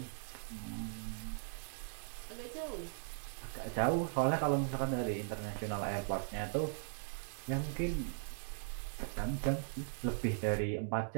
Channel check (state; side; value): silent; left; digital silence